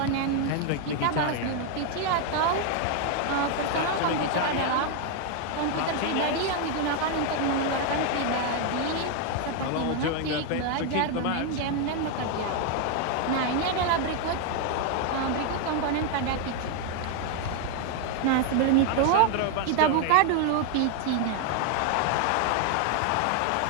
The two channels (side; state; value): both; different; correlation 0.01